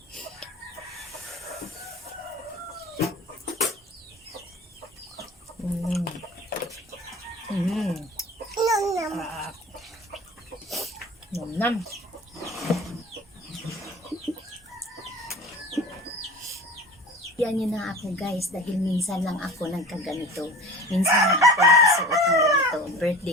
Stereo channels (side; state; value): both; normal; correlation 0.38